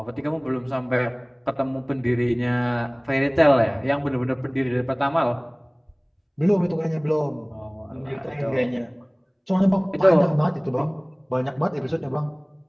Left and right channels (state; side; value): identical; both; correlation 1.00